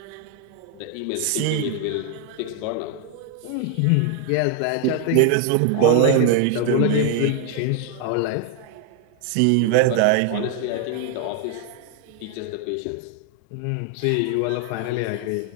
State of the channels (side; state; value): both; different; correlation 0.00